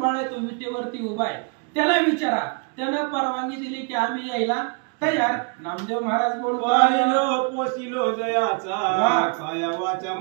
आहे तो विटेवरती उभा आहे, त्याला विचारा. त्यानं परवानगी दिली की आम्ही यायला तयार. नामदेव महाराज बोलतो पोसिलो जयाचा काया वाचा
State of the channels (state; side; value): quieter; left; 35.4 dB